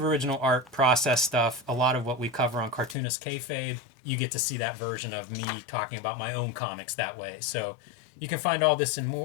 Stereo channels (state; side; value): drops out; right; at 3.0 s